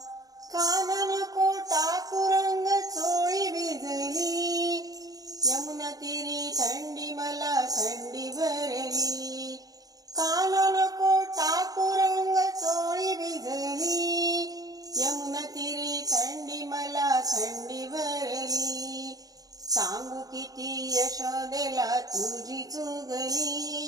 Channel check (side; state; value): left; late; 0.18 ms